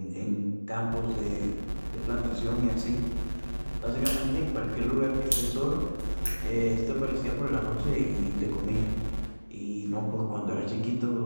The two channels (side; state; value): both; inverted; correlation -1.00